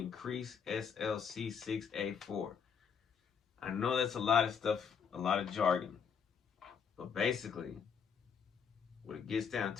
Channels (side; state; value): right; quieter; 6.9 dB